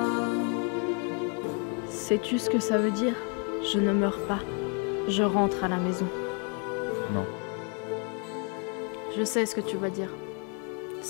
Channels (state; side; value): quieter; right; 38.0 dB